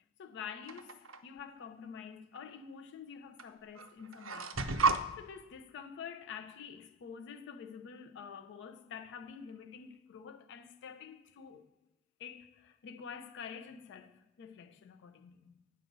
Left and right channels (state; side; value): normal; both; correlation 0.13